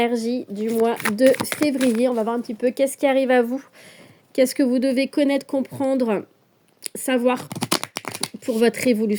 du mois de février. On va voir un petit peu qu'est-ce qui arrive à vous, qu'est-ce que vous devez connaître, comprendre, savoir pour votre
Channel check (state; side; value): identical; both; correlation 1.00